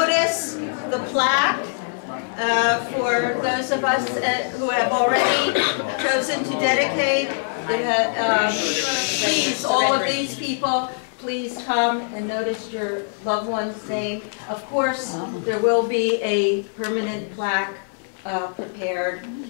the plaque for those of us who have already chosen to dedicate. Please, all of these people, please come and notice your loved one's name. Of course, there will be a permanent plaque prepared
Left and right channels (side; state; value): right; silent; digital silence